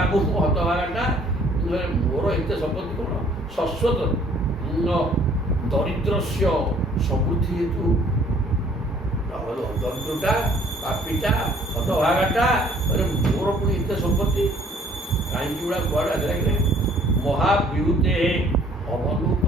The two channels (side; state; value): both; normal; correlation 0.58